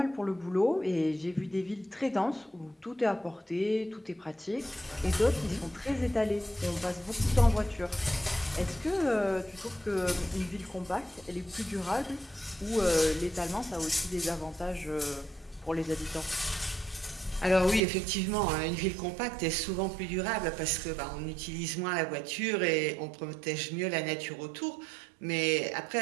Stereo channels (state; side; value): drops out; left; at 17.8 s